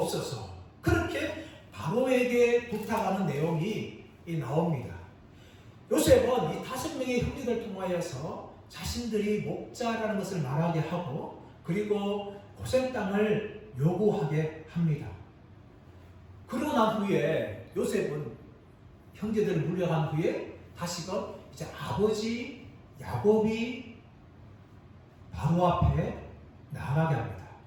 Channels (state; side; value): identical; both; correlation 1.00